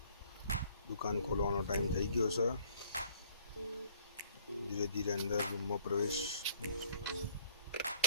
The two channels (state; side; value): inverted; both; correlation -0.60